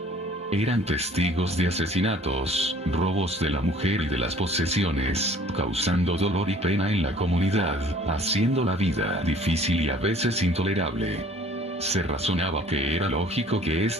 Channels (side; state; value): both; normal; correlation 0.52